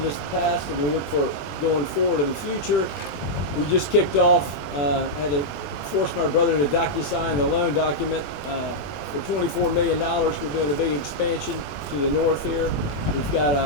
past, and we look for going forward in the future. We just kicked off, had to force my brother to DocuSign the loan document for $24 million. We're doing a big expansion to the north here. We've got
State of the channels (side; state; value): right; late; 21 ms